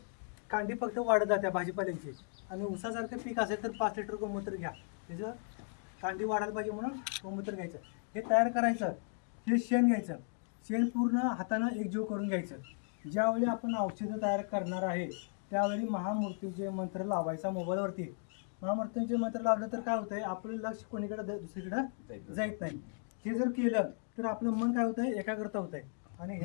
कांडी फक्त वाढत जाते भाजीपाल्यांची. आणि ऊसासारखं पीक असेल तर 5 लिटर गोमूत्र घ्या, त्याचं कांडी वाढायला पाहिजे म्हणून गोमूत्र घ्यायचं. हे तयार करायचं. हे शेण घ्यायचं. शेण पूर्ण हातानं एकजीव करून घ्यायचं. ज्यावेळी आपण औषधं तयार करणार आहे त्यावेळी महामृत्यूंजय मंत्र लावायचा मोबाईलवरती. महामृत्यूंजय मंत्र लावलं तर काय होतंय, आपलं लक्ष कोणीकडे दुसरीकडे जात नाही. हे जर केलं तर आपलं मन काय होतंय, एकाग्रता होत आहे. आणि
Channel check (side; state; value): right; silent; 54 dB below the other